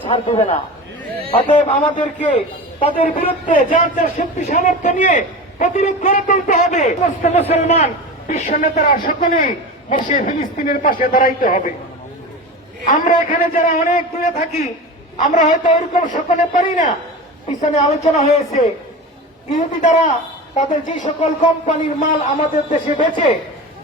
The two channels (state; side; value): normal; both; correlation 0.29